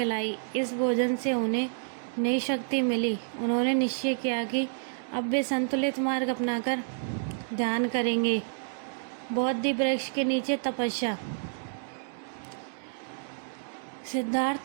इस भोजन से उन्हें नई शक्ति मिली। उन्होंने निश्चय किया कि अब वे संतुलित मार्ग अपनाकर ध्यान करेंगे। बोधि वृक्ष के नीचे तपस्या। सिद्धार्थ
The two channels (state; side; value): silent; left; digital silence